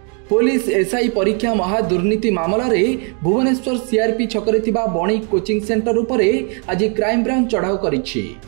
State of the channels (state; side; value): quieter; left; 38.5 dB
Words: Police SI परीक्षा महादुर्नीति मामला रे भुवनेश्वर सीआरपी छकरे थिबा बणिक कोचिंग सेंटर उपरे आज क्राइम ब्रांच चढ़ाऊ करिछि।